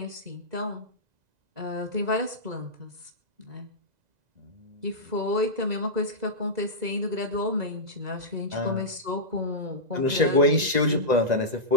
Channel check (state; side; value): late; left; 2.0 ms